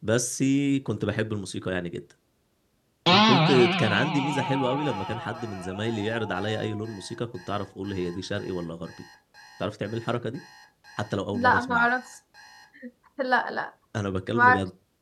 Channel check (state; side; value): identical; both; correlation 1.00